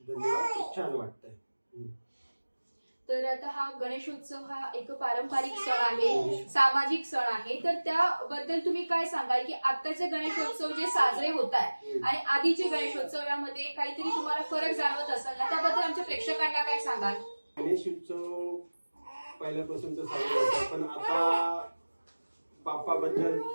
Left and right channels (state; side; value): inverted; both; correlation -1.00